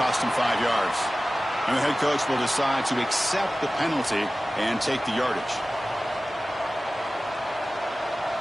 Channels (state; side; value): normal; both; correlation 0.96